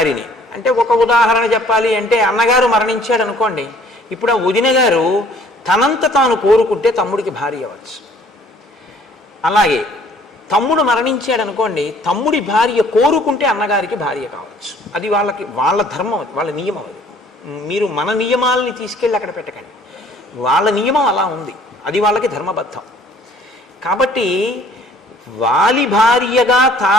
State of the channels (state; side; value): normal; both; correlation 0.57